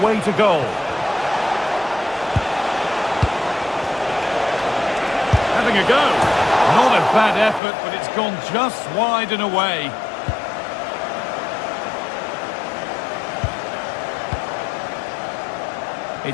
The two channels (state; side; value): drops out; right; at 7.6 s